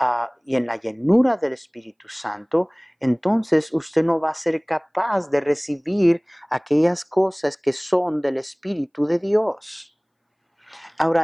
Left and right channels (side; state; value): both; identical; correlation 1.00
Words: y en la llenura del Espíritu Santo, entonces usted no va a ser capaz de recibir aquellas cosas que son del Espíritu de Dios.